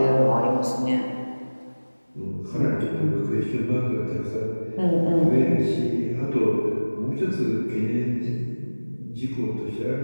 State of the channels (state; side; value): inverted; both; correlation -1.00